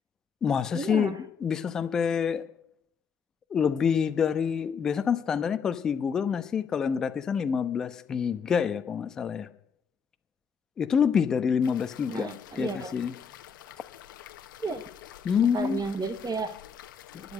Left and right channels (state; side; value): quieter; right; 6.0 dB